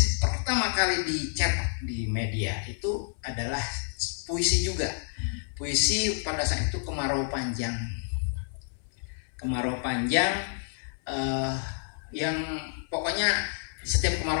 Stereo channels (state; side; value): silent; right; 59 dB below the other